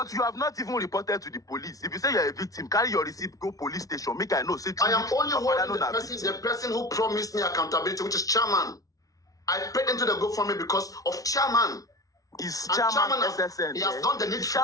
you have not even reported to the police. If you say you're a victim, carry your receipt, go police station. Make I know. Say I am only holding Papariano the person who promised me accountability, which is chairman. I paid into the GoFundMe because of chairman. Is And chairman has, SSN? he has done the Is needful.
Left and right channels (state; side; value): late; right; 0.17 ms